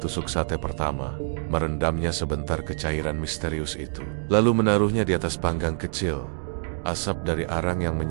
sate pertama, merendamnya sebentar ke cairan misterius itu, lalu menaruhnya di atas panggang kecil. Asap dari arang yang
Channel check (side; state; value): left; silent; digital silence